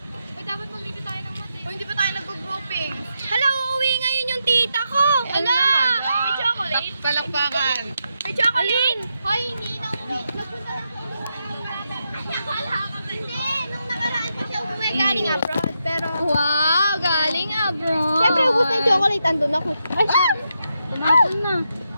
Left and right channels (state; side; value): inverted; both; correlation -0.84